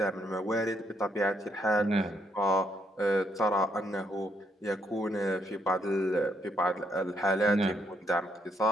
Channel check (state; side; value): normal; both; correlation 0.75